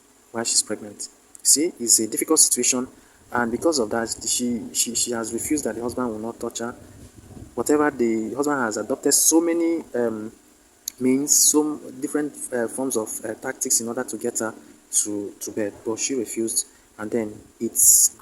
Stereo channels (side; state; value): both; identical; correlation 1.00